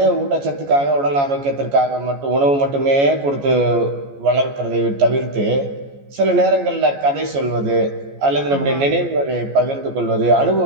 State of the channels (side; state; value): left; late; 14 ms